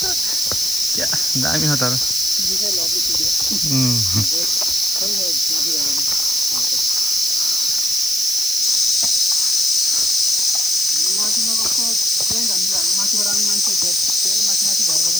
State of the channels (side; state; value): right; noise; hiss, 4 dB below the sound